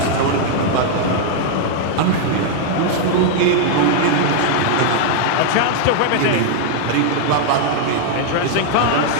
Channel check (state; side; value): different; both; correlation 0.00